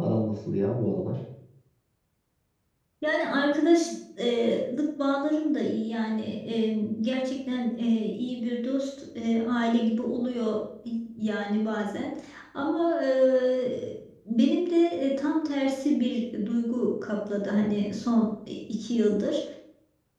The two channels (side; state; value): both; identical; correlation 1.00